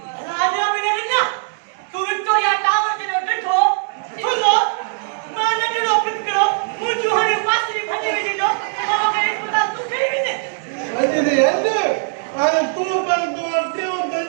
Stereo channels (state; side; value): silent; left; digital silence